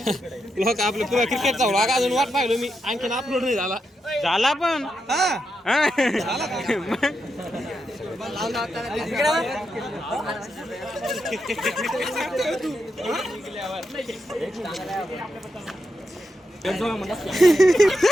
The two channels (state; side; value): normal; both; correlation 0.85